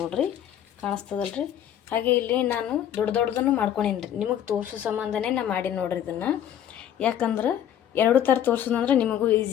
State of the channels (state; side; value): quieter; right; 10.3 dB